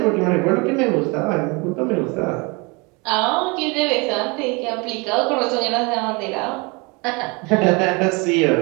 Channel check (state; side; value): quieter; left; 28.3 dB